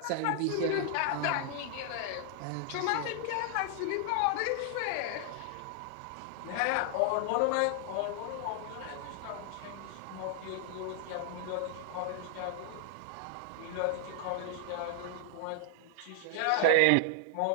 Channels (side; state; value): both; different; correlation 0.00